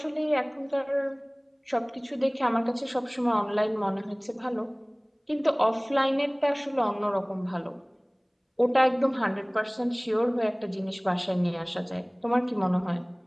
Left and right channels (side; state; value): both; identical; correlation 1.00